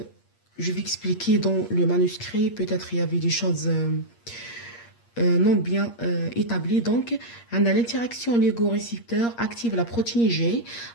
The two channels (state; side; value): late; right; 8.5 ms